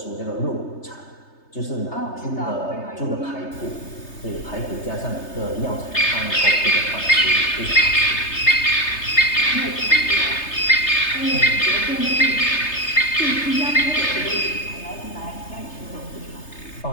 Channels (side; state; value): right; late; 3.3 ms